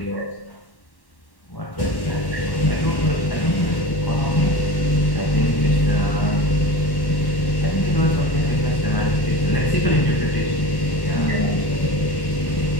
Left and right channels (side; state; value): right; late; 1.1 ms